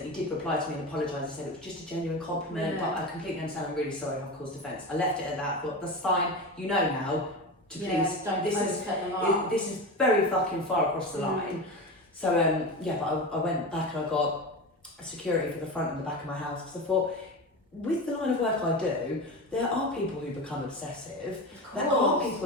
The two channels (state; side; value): normal; both; correlation 0.25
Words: He did reply to me and apologise. He said it was just a genuine compliment, but I completely understand. I'm really sorry I've caused offence. I left it at that. I thought, that's fine. You know now to please. This is very fucking far across the line. So but I went back and I got security for the front and the back of my house because I thought, with the line of work I do, there are people who become obsessive. There are